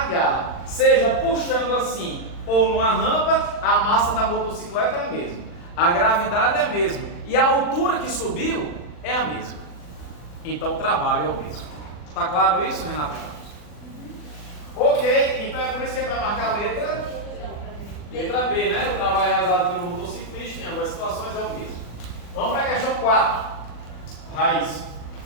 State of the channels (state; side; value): late; right; 40 ms